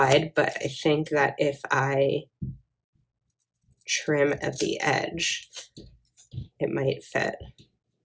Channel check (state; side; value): identical; both; correlation 1.00